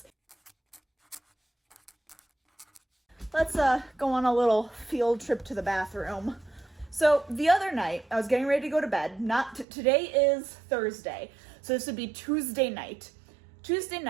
Let's, go on a little field trip to the bathroom. So, the other night, I was getting ready to go to bed. Today is Thursday, so this would be Tuesday night. Tuesday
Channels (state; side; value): drops out; left; at 9.7 s